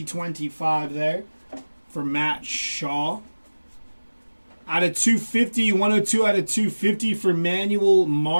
there for Matt Shaw. Out of 250, 102 out of 250 for Manuel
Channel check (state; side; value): inverted; both; correlation -1.00